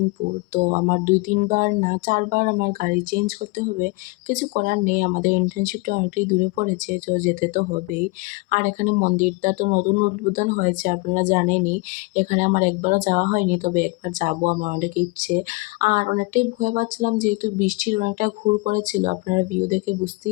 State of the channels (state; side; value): quieter; right; 26.2 dB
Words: তো আমার ২-৩ বার না ৪ বার আমার গাড়ি চেঞ্জ করতে হবে। কিছু করার নেই, আমাদের ইন্টার্নশিপটা অনেকটাই দূরে পড়েছে, তো যেতে তো হবেই। আর এখানে মন্দিরটা তো নতুন উদ্বোধন হয়েছে, আপনারা জানেনই। এখানে আমার একবারও যাওয়া হয়নি, তবে একবার যাবো, আমার অনেক ইচ্ছে। আর অনেকটাই ভয় পাচ্ছিলাম যেহেতু বৃষ্টির অনেকটা ঘুর করেছিল, আপনারা ভিউ দেখে